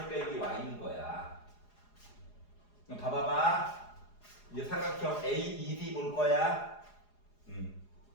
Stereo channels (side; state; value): right; late; 4.8 ms